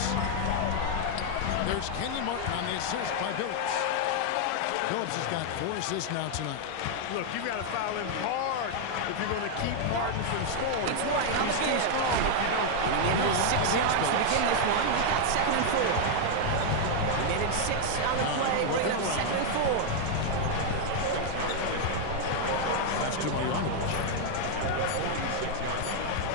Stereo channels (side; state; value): both; different; correlation 0.00